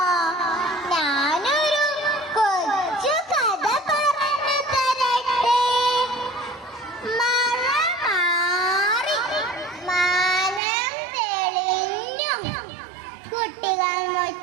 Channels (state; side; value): drops out; left; at 10.6 s